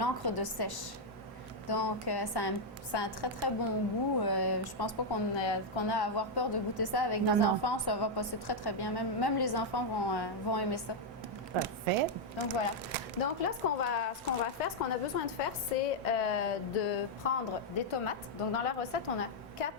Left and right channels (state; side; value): normal; both; correlation -0.01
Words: de sèche. Donc, ça a un très, très bon goût. Je pense pas qu'on a à avoir peur de goûter ça avec des enfants. Ça va passer très, très bien. Même les enfants vont aimer ça. Parfait. Donc, voilà. Donc là, ce qu'on a besoin de faire, c'est de prendre des tomates. Donc, dans la recette, on a 4